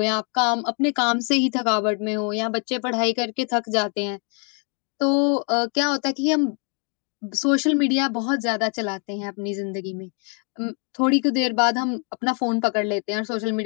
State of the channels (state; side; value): quieter; right; 39.3 dB